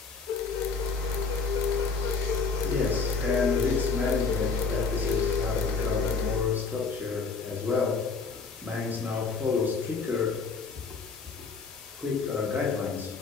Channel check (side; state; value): right; quieter; 4.7 dB